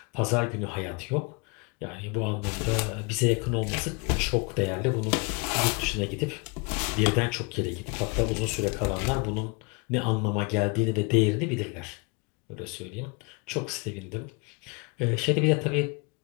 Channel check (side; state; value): right; quieter; 30.5 dB